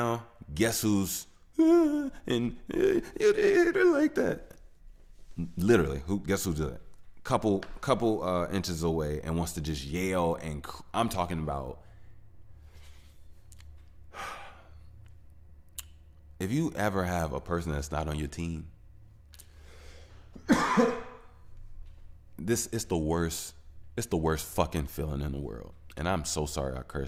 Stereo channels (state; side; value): identical; both; correlation 1.00